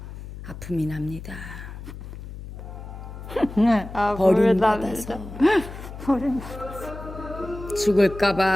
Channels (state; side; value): noise; left; hum, 12 dB below the sound